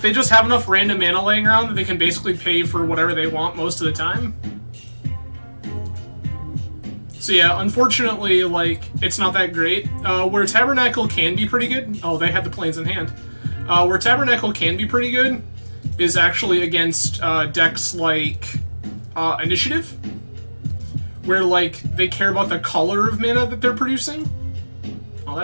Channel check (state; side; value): inverted; both; correlation -1.00